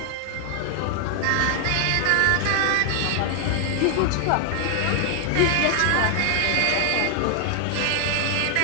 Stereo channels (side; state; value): both; different; correlation 0.00